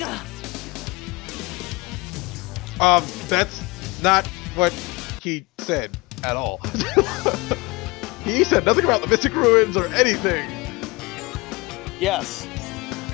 That's not what he said at all. He said nothing about the Mystic Ruins or anything. Yes.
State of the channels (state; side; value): quieter; right; 24.9 dB